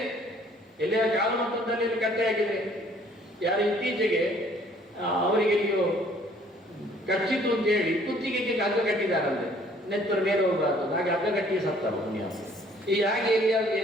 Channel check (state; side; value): normal; both; correlation 0.59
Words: ಎಲ್ಲಿಯ ಕಾಲಮಂತ್ರದಲ್ಲಿ ಕಟ್ಟೆಯಾಗಿದೆ. ಯಾರು ಇತ್ತೀಚೆಗೆ ಅವರಿಗೆ ನೀವು ಕಚ್ಚಿತು ಅಂತ ಹೇಳಿ ಕುತ್ತಿಗೆಗೆ ಹಗ್ಗ ಕಟ್ಟಿದಾರಂತೆ, ನೆತ್ತರ ಮೇಲೆ ಹೋಗಬಾರ್ದು, ಹಾಗೆ ಹಗ್ಗ ಕಟ್ಟಿ ಸತ್ತವ ಪುಣ್ಯ. ಈ ಹಾಗೆ